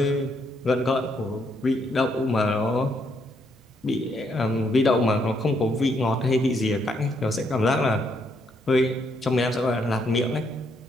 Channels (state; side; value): normal; both; correlation 0.74